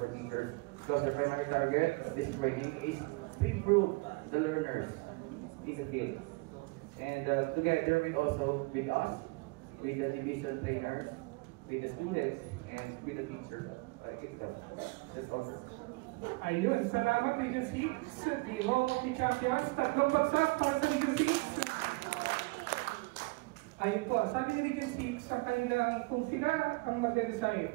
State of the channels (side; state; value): left; quieter; 26.7 dB